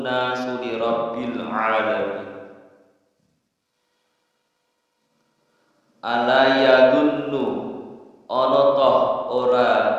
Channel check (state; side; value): identical; both; correlation 1.00